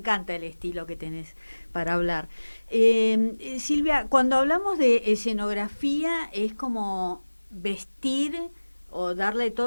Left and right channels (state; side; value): inverted; both; correlation -1.00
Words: el estilo que tenés para hablar. Silvia, cuando hablamos de escenografía es como vestir o darle